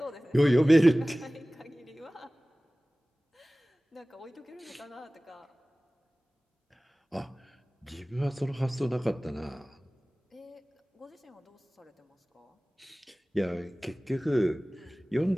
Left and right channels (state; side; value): normal; both; correlation 0.98